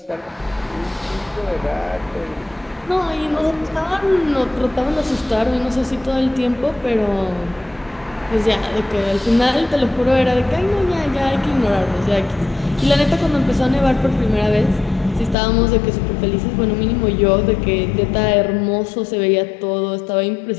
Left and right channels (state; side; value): drops out; right; at 15.4 s